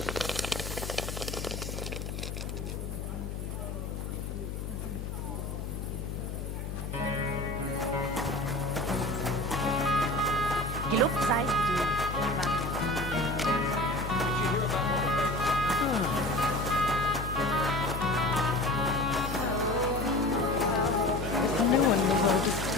No one in the world is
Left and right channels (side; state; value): left; noise; hum, 5 dB below the sound